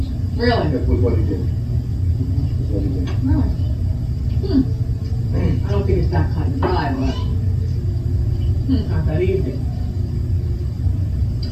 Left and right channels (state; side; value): identical; both; correlation 1.00